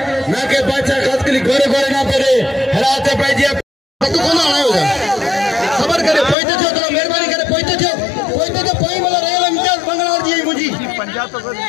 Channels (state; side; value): drops out; right; at 6.4 s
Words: ना के बादशाह खास के लिए गोरे ना पड़े हराते पे जी तू कौन आया होगा खबर करे पहुंचे थे तो मेहरबानी करे पहुंचे थे पहुंच वाला रेल इम्तियाज बंगलार जी मुझी पंजाब तो